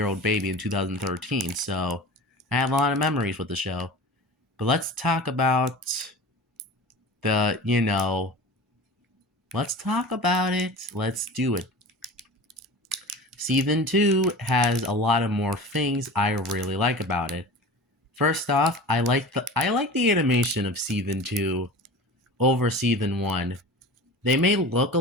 baby in 2013. So I have a lot of memories with the show. But let's talk about the, let's talk about it. Let's do it. Season 2 has a lot of more things I really like about it. First off, I like the animation of season 2 over season 1. They may look a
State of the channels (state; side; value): normal; both; correlation 0.36